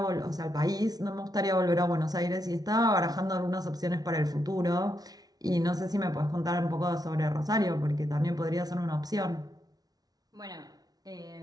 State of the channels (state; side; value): late; left; 0.19 ms